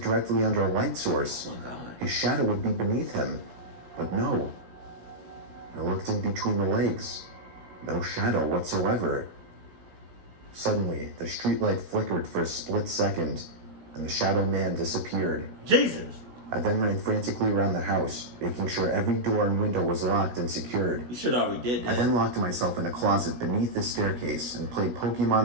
under a light source. Oh my God. His shadow would be beneath him, but no. I looked in between the legs. No shadow whatsoever. Suddenly, the streetlight flickered for a split second, and the shadow man disappeared. Jesus. I then ran frantically around the house, making sure every door and window was locked and secured. You should already did that. I then locked myself in a closet beneath the staircase and played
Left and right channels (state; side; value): late; left; 17 ms